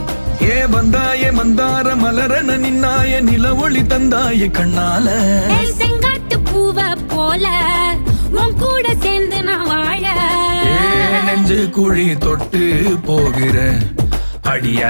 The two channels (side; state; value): both; inverted; correlation -1.00